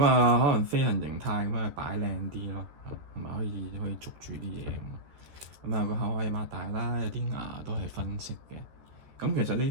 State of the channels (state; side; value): late; left; 13 ms